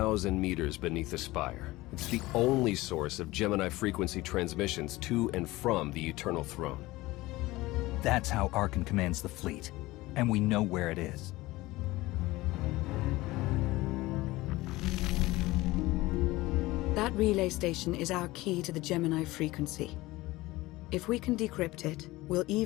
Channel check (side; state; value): right; quieter; 19.3 dB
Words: meters beneath the spire. It's the only source of Gemini frequency transmissions to and from the Eternal Throne. That's how Arkan commands the fleet, and we know where it is. That relay station is our key to the Gemini frequency. If we can decrypt it, we'll